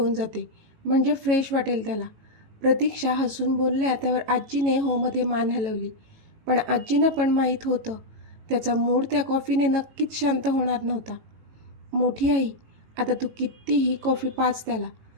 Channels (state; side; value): late; left; 18 ms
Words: जाते, म्हणजे फ्रेश वाटेल त्याला," प्रतीक्षा हसून बोलल्या. त्यावर आजीने होमध्ये मान हलवली. पण आजींना पण माहीत होतं त्याचा मूड त्या कॉफीने नक्कीच शांत होणार नव्हता. "मोठी आई, आता तू कितीही कॉफी पाज त्याला.